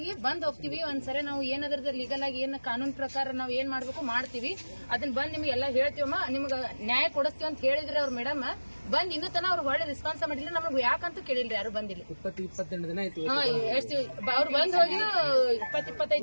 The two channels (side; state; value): both; inverted; correlation -1.00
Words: ಬಂದ್ ಹೋಗ್ತೀವಿ ಒಂದ್ಸರಿ, ನಾವು ಏನದ್ರದ ಲೀಗಲ್ ಆಗಿ ಏನ್ ಕಾನೂನು ಪ್ರಕಾರ ನಾವ್ ಏನ್ ಮಾಡ್ಬೇಕು ಮಾಡ್ತೀವಿ, ಅದನ್ನ ಬಂದ್ ನಿಮ್ಗೆ ಎಲ್ಲ ಹೇಳ್ತೀವಮ್ಮ, ನಿಮ್ಗ ನ್ಯಾಯ ಕೊಡಿಸ್ತೀವಿ ಅಂತ ಹೇಳಿದ್ರಿ ಅವ್ರ ಮೇಡಮ್. ಬಂದ್ ಇನ್ನೂ ತನ ಅವ್ರು ಹೊಳ್ಳಿ ರೆಸ್ಪಾನ್ಸ್ ಮಾಡಿಲ್ಲ, ನಮ್ಗೆ ಯಾಕಂತೂ ಕೇಳಿಲ್ರಿ, ಯಾರು ಬಂದಿಲ್ಲ. 20-22 ದಿನ ಆಯ್ತು. ಹಾ, ಎಷ್ಟು ಅವ್ರು ಬಂದ್ ಹೋಗಿ 20-25